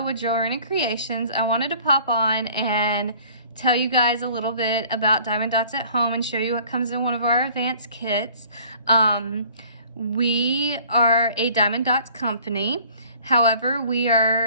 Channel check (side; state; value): both; inverted; correlation -0.52